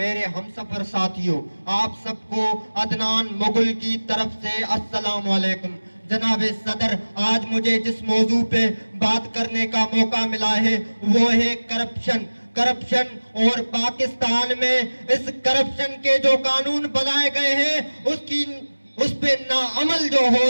ہمسفر ساتھیوں، آپ سب کو عدنان مغل کی طرف سے السلام علیکم۔ جناب صدر، آج مجھے جس موضوع پہ بات کرنے کا موقع ملا ہے وہ ہے کرپشن۔ کرپشن اور پاکستان میں اس کرپشن کے جو قانون بنائے گئے ہیں اس پہ ناعمل جو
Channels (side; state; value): both; inverted; correlation -1.00